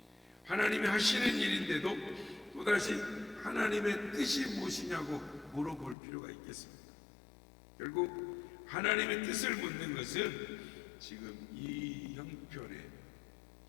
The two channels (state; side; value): drops out; right; at 6.0 s